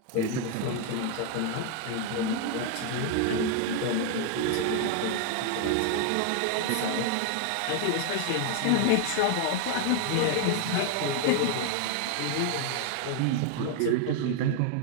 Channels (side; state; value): both; different; correlation 0.00